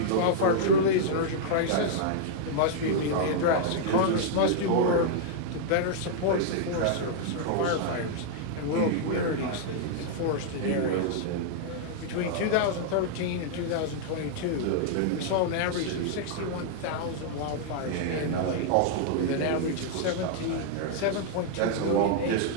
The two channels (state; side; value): different; both; correlation -0.01